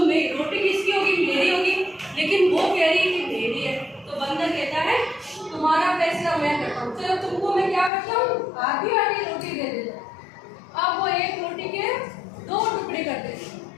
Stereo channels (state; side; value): drops out; right; at 7.9 s